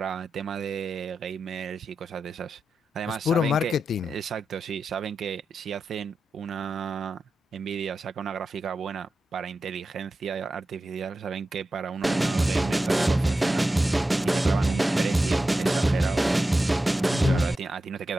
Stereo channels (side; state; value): both; normal; correlation 0.91